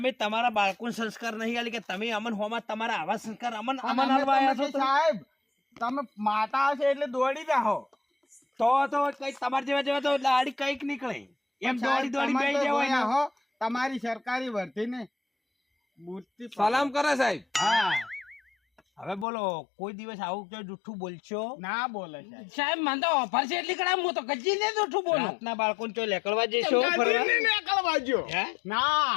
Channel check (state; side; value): drops out; right; at 19.2 s